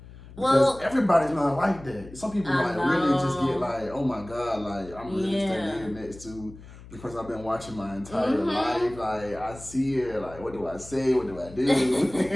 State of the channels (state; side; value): noise; left; hum, 18 dB below the sound